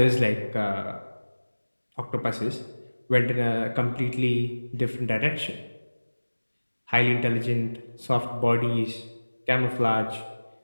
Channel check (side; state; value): both; inverted; correlation -1.00